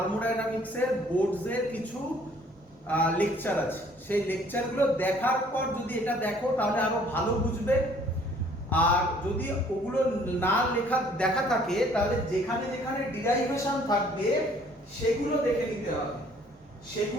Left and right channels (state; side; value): normal; both; correlation 0.58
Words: বোর্ডসের কিছু লেকচার আছে। সেই লেকচারগুলো দেখার পর যদি এটা দেখো তাহলে আরো ভালো বুঝবে। আর যদি ওগুলো না দেখা থাকে তাহলে যেখানে যেখানে ডিরাইভেশন থাকবে সেগুলো দেখে নিতে হবে।